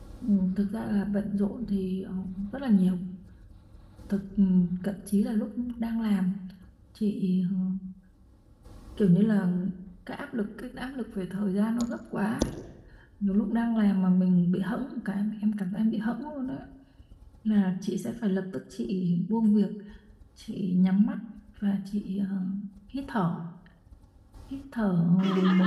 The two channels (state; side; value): identical; both; correlation 1.00